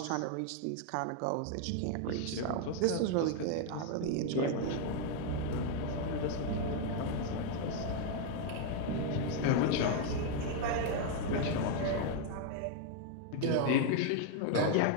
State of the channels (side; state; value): both; different; correlation 0.01